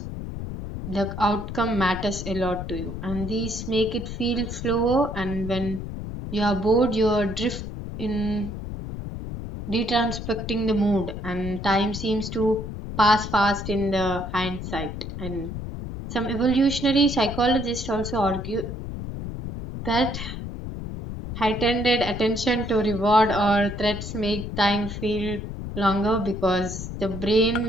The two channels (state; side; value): noise; left; rumble, 7 dB below the sound